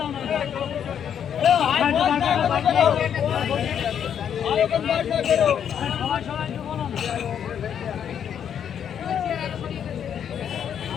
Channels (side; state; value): right; quieter; 8.6 dB